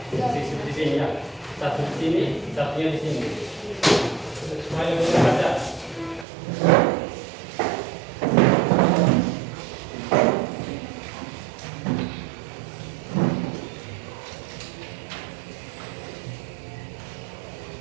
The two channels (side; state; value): left; drops out; at 6.2 s